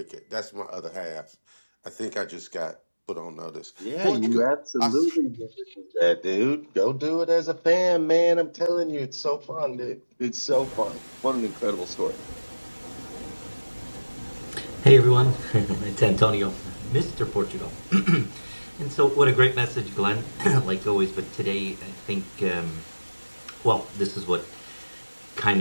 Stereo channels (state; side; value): inverted; both; correlation -1.00